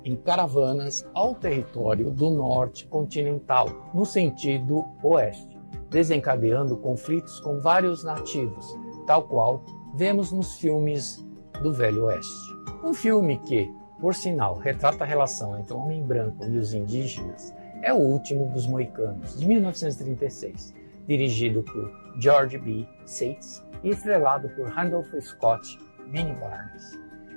em caravanas ao território do norte continental, no sentido oeste, desencadeando conflitos com vários nativos, tal qual vemos nos filmes do Velho Oeste. Um filme que, por sinal, retrata a relação entre o homem branco e os indígenas é O Último dos Moicanos, de 1936, dirigido por George B. Seitz e estrelado por Randolph Scott e Benny Barnes.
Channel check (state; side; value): inverted; both; correlation -1.00